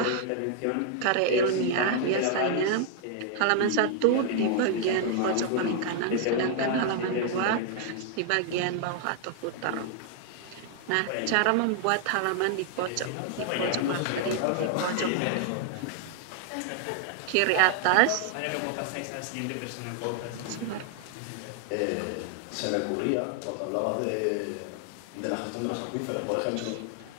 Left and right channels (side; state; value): both; different; correlation 0.00